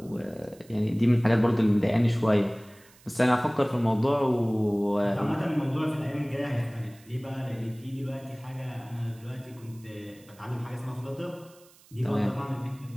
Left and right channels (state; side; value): noise; right; hiss, 27 dB below the sound